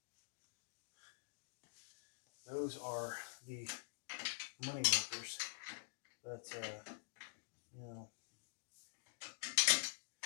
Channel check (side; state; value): right; silent; digital silence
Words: those are the money makers. But, you know,